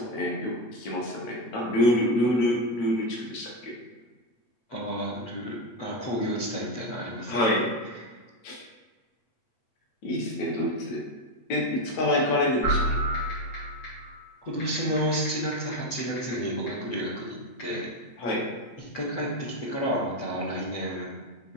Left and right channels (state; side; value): late; right; 8.2 ms